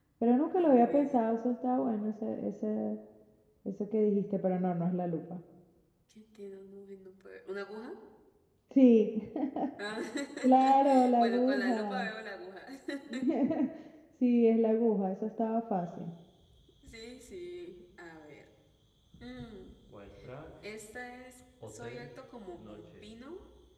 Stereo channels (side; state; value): both; identical; correlation 1.00